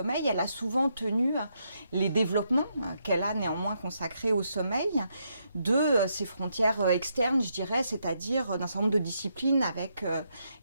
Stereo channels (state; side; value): inverted; both; correlation -0.79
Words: elle a souvent tenu les développements qu'elle a néanmoins consacrés au sommeil de ses frontières externes, je dirais, c'est-à-dire d'un certain nombre de disciplines avec